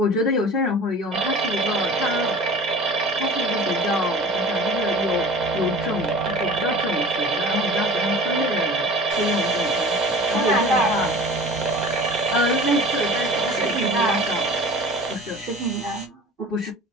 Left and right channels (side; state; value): both; normal; correlation 0.41